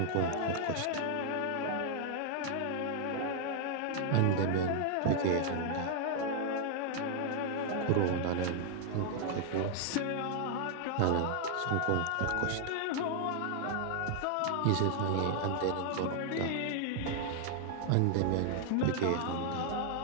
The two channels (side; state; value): both; different; correlation 0.00